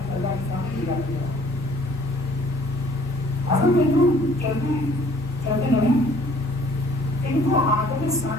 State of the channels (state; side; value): normal; both; correlation 0.56